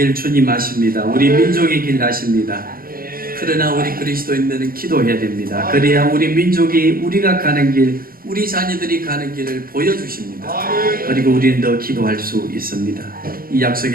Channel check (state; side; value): late; left; 0.42 ms